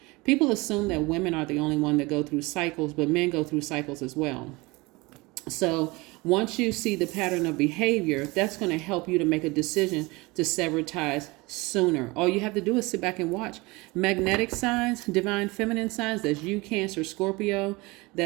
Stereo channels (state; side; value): quieter; left; 23.8 dB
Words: People assume that women are the only one that go through cycles, but men go through cycles as well. So once you see the pattern of behavior, that's going to help you to make a decision to sever ties sooner. All you have to do is sit back and watch. Magnetic signs, divine feminine signs, that's you, Cancer, Scorpio,